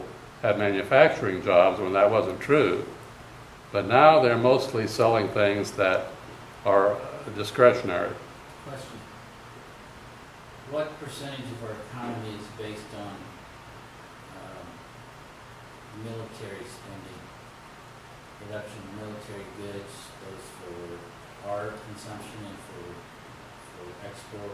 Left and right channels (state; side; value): identical; both; correlation 1.00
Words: had manufacturing jobs when that wasn't true, but now they're mostly selling things that are discretionary. Question. What percentage of our economy is based on military spending? Production of military goods, both for our consumption and for